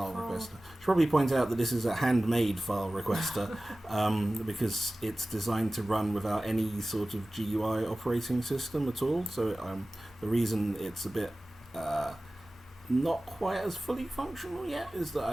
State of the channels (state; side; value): normal; both; correlation 0.97